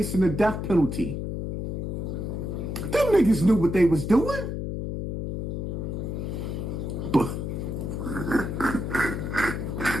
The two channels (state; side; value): noise; left; hum, 3 dB below the sound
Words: the death penalty. Them niggas knew what they was doing. But